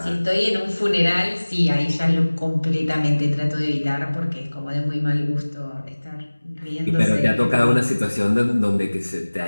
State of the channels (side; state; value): both; inverted; correlation -1.00